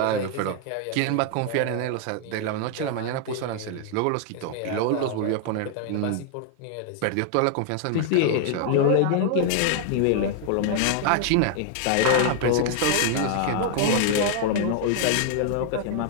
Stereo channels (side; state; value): both; different; correlation 0.00